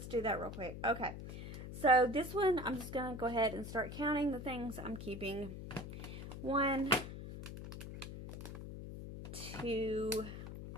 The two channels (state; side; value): noise; left; hum, 9 dB below the sound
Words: do that real quick. Okay. So this one, I'm just going to go ahead and start counting the things I'm keeping. 1, 2,